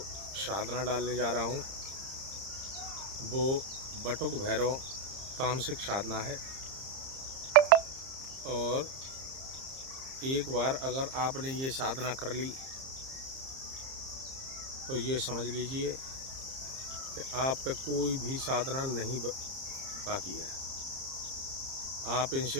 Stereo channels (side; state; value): left; late; 30 ms